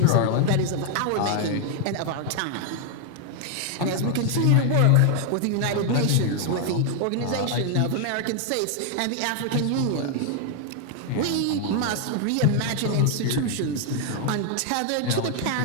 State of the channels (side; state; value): both; different; correlation 0.00